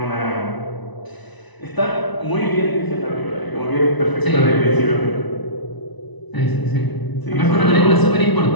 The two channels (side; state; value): right; late; 1.0 ms